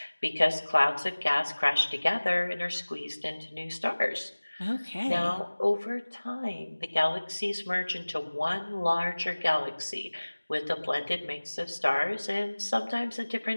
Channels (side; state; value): both; inverted; correlation -1.00